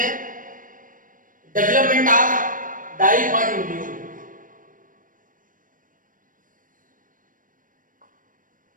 डेवलपमेंट ऑफ डाइकॉट एम्ब्रियो।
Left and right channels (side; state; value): left; late; 0.39 ms